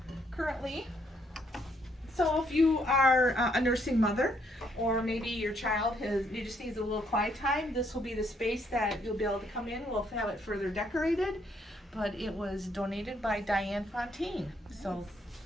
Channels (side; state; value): both; normal; correlation 0.71